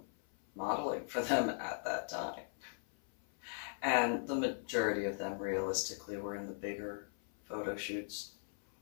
modeling for them at that time. And the majority of them realistically were in the bigger photo shoots.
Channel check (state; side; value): silent; right; 52 dB below the other